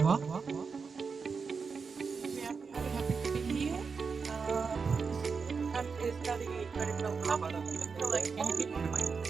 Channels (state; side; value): quieter; left; 5.2 dB